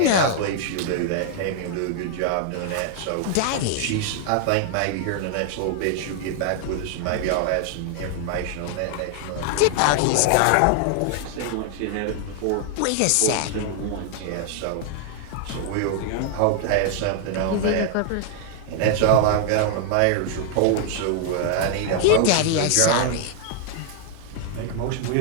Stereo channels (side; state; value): both; different; correlation 0.00